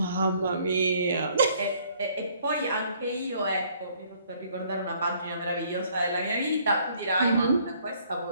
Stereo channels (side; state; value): both; inverted; correlation -0.63